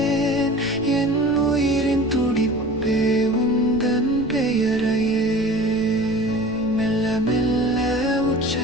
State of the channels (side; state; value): left; noise; rumble, 17 dB below the sound